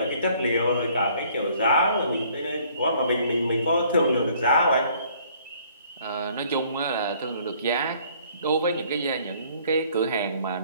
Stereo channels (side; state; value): both; inverted; correlation -0.60